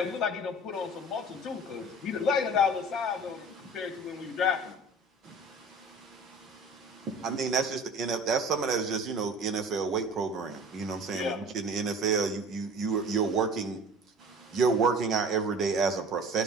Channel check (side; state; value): both; normal; correlation 0.43